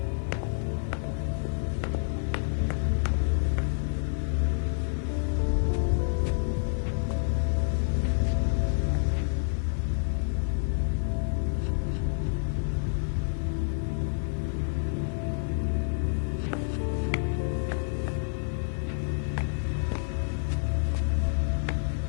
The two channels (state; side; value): silent; right; digital silence